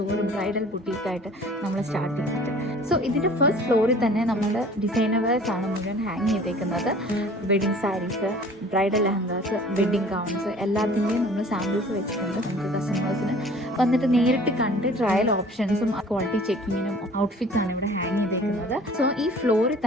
ബ്രൈഡൽ ബുട്ടീക്കായിട്ട് നമ്മൾ സ്റ്റാർട്ട് ചെയ്തിട്ട്. സോ ഇതിൻ്റെ ഫസ്റ്റ് ഫ്ലോറിൽ തന്നെ നമ്മുടെ ഡിസൈനേഴ്സ് ആണ് മുഴുവൻ ഹാങ് ചെയ്തേക്കുന്നത്. Wedding sarees, bridal lehengas, wedding gowns എല്ലാത്തിൻ്റെയും നമ്മൾ സാമ്പിൾസ് വെച്ചിട്ടുണ്ട്. നമുക്ക് കസ്റ്റമേഴ്സിന് വന്നിട്ട് നേരിട്ട് കണ്ട് ട്രയൽ ഓപ്ഷൻസും ക്വാളിറ്റി ചെക്കിങ്ങിനും ഔട്ട്ഫിറ്റ്സ് ആണ് ഇവിടെ ഹാങ് ചെയ്തേക്കുന്നത്. സോ ഈ ഫ്ലോറിൽ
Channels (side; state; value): both; normal; correlation 0.49